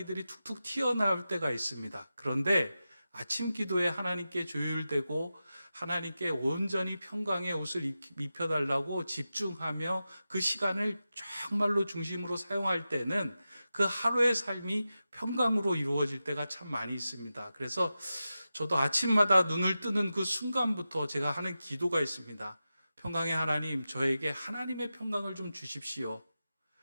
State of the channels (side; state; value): both; inverted; correlation -0.92